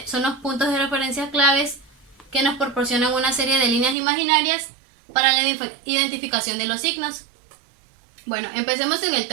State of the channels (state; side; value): drops out; left; at 4.0 s